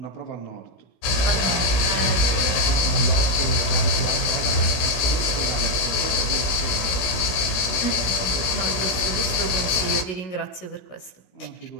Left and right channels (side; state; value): right; late; 17 ms